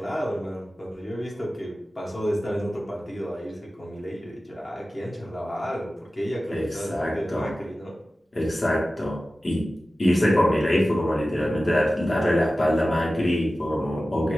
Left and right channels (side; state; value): both; normal; correlation 0.95